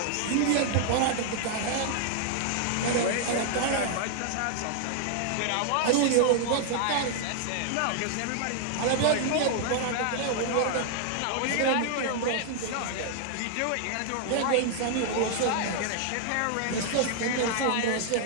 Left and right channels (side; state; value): both; different; correlation 0.00